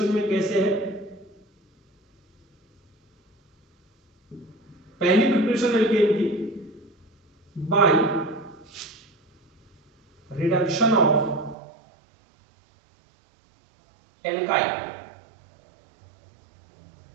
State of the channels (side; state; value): left; drops out; at 11.6 s